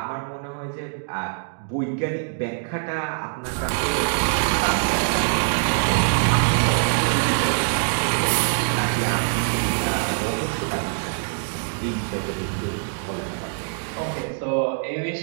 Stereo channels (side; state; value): left; silent; digital silence